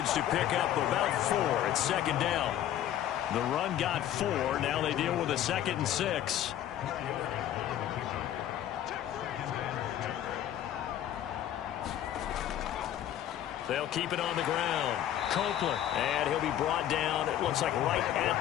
to pick up about 4 at 2nd down. The run got 4. Now they deal with a 2nd and 6. They'll keep it on the ground. Copeland. And he'll be brought down, it looks like right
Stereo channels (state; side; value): quieter; right; 11.6 dB